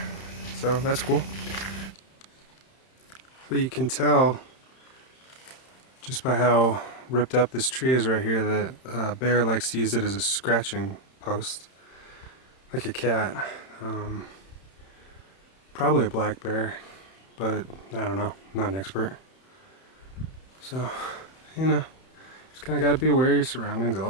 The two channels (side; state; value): right; late; 31 ms